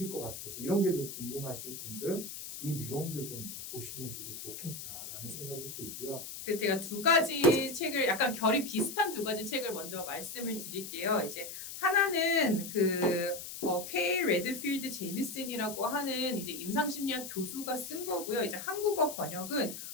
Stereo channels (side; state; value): left; noise; hiss, 9 dB below the sound